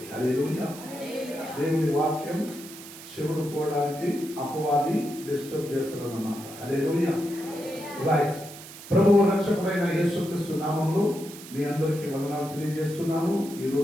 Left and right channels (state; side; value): noise; right; hiss, 15 dB below the sound